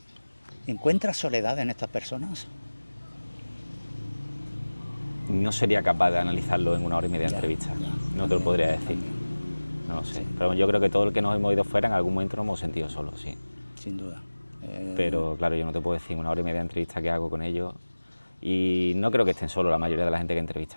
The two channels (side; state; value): both; inverted; correlation -1.00